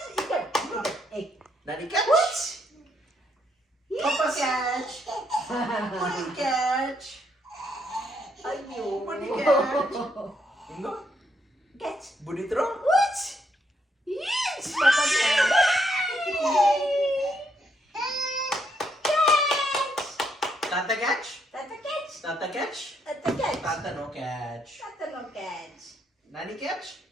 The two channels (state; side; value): normal; both; correlation 0.75